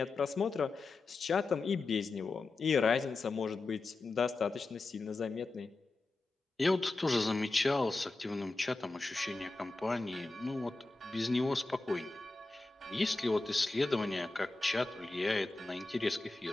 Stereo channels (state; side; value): quieter; right; 3.3 dB